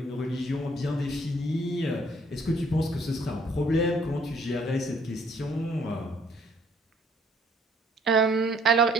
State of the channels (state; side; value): normal; both; correlation 0.62